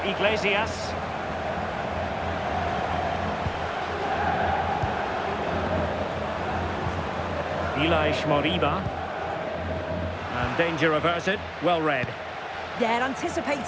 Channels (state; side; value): identical; both; correlation 1.00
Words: Iglesias. Ilaix Moriba. And danger averted. Well read. Yeah,